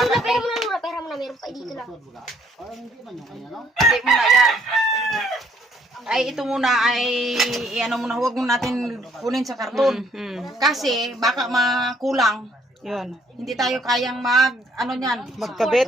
kay, Pera mo na, meron pa dito lang. hindi mo na yan. Ay, ito muna ay, ano muna, huwag mo natin kunin sa karton. Kasi, baka makulang. Yun. Hindi tayo kayang ano niyan.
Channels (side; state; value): both; normal; correlation 0.65